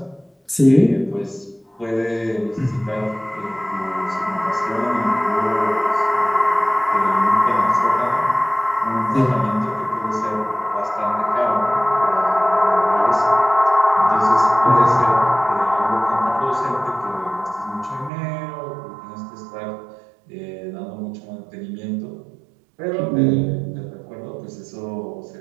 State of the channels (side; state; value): left; drops out; at 18.1 s